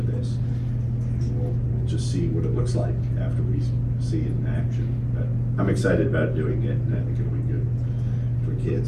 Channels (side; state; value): both; identical; correlation 1.00